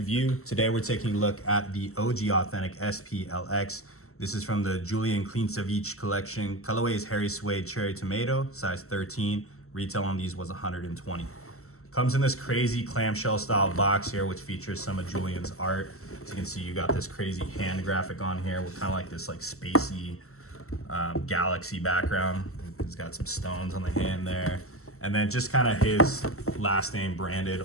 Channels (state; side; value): late; right; 0.63 ms